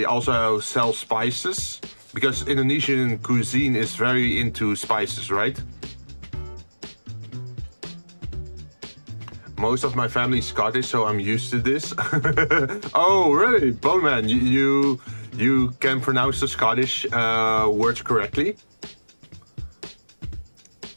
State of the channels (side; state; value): both; inverted; correlation -1.00